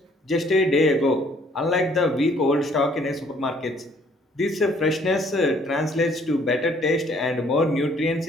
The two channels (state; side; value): normal; both; correlation 0.61